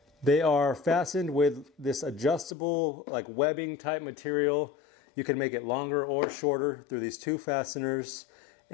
They are fastened with this adjustable like webbing type material. You can make it longer or shorter through these 2 fasteners,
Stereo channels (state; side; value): drops out; right; at 2.6 s